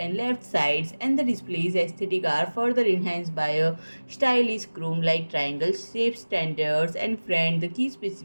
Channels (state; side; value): inverted; both; correlation -1.00